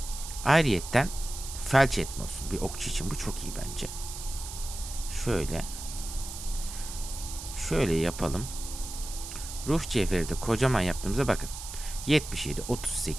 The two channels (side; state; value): right; noise; hiss, 10 dB below the sound